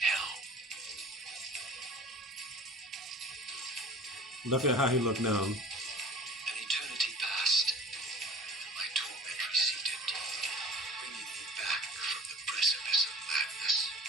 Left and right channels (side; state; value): both; normal; correlation 0.43